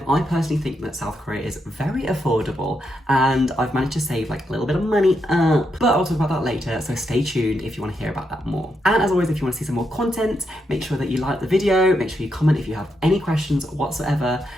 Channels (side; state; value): both; normal; correlation 0.81